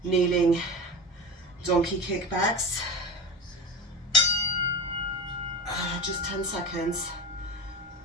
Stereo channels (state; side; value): normal; both; correlation 0.29